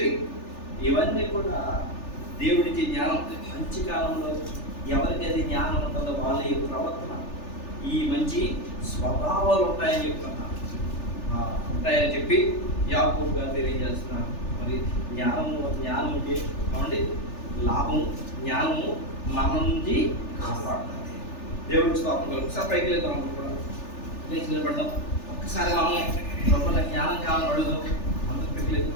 ఇవన్నీ కూడా దేవుడికి జ్ఞానం. మంచి కాలంలో ఎవరికి అది జ్ఞానం ఉంటుందో వాళ్ళ యొక్క ప్రవర్తన, ఈ మంచి స్వభావాలు ఉంటాయని చెప్తున్నారు. ఉంటాయని చెప్పి యాకోబు గారు తెలియజేస్తున్నారు. మరి జ్ఞానం అంటే ఏమండి లాభం. జ్ఞానము మన నుంచి కాపాడుతుంది. దేవుడికి స్తోత్రం కలుగు. ఒకసారి పైకి వెళ్తాం, కూడా లేచి నిలబడతాం. ఒక్కసారి మనం లోపల జ్ఞానం కావాలని అడుగుదాం. అందరూ పైకి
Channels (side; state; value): right; late; 3.4 ms